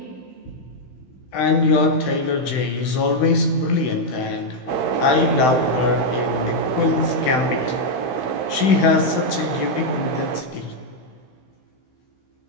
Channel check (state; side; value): late; right; 16 ms